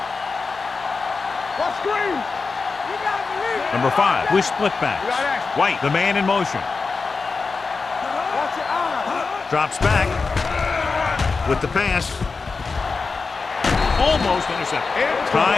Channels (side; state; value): right; quieter; 4.4 dB